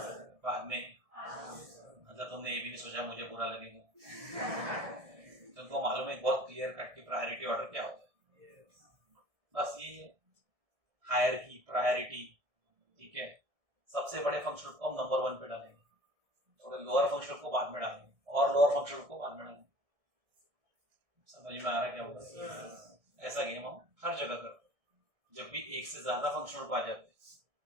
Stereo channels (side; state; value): left; late; 1.7 ms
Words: मतलब तुमने ये भी नहीं सोचा मुझे बुरा लगेगा। तुमको मालूम है बहुत क्लियर कट की प्रायोरिटी ऑर्डर क्या होता है, बस ये हायरार्की प्रायोरिटी। ठीक है, सबसे बड़े फंक्शन को हम नंबर 1 पे डालेंगे, थोड़े लोअर फंक्शन को बाद में डालेंगे और लोअर फंक्शन को बाद में डालेंगे। समझ में आ रहा है क्या होगा? ऐसा गेम हम हर जगह करते हैं। जब भी एक से ज्यादा फंक्शन ग्रुप आ जाते हैं